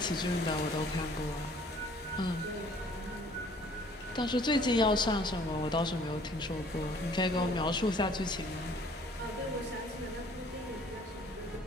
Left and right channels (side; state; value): both; normal; correlation 0.55